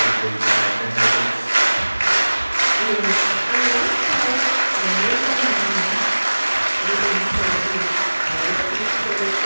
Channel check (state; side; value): inverted; both; correlation -1.00